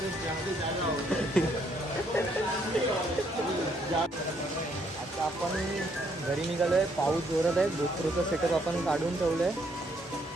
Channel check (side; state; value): both; normal; correlation 0.70